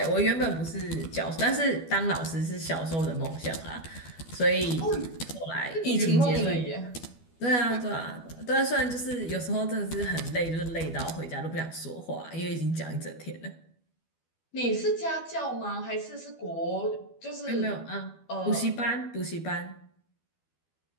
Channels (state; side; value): late; right; 12 ms